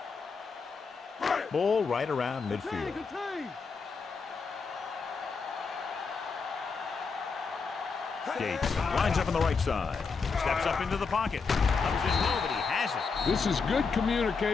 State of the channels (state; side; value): quieter; right; 5.0 dB